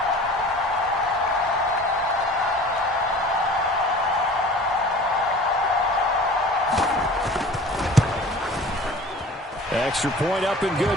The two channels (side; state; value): both; normal; correlation 0.43